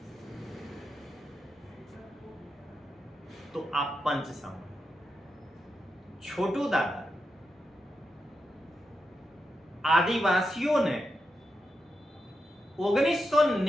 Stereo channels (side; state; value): both; normal; correlation 0.87